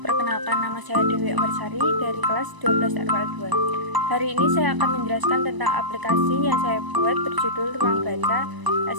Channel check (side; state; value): left; late; 1.0 ms